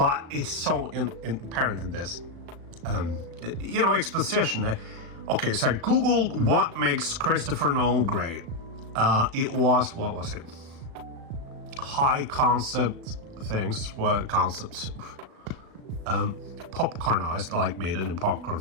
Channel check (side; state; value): left; late; 37 ms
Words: it's so apparent in this. Exposition. Okay, so I googled what makes Christopher Nolan great. It was, what was it? High concept things. What concepts? Popcornized, like made it in popcorn